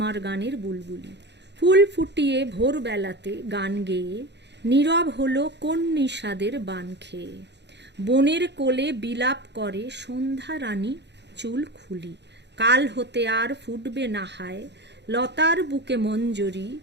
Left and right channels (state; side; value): late; left; 0.50 ms